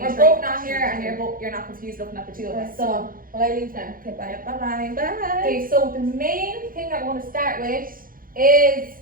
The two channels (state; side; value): late; left; 0.41 ms